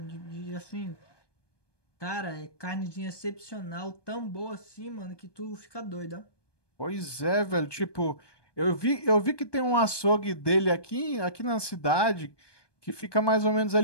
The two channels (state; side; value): late; right; 1.2 ms